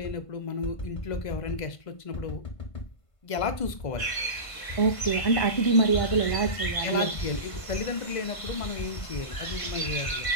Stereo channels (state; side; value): late; right; 1.5 ms